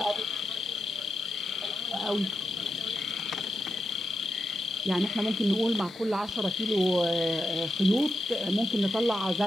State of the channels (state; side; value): normal; both; correlation 0.87